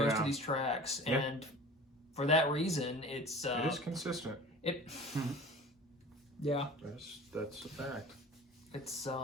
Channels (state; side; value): normal; both; correlation 0.40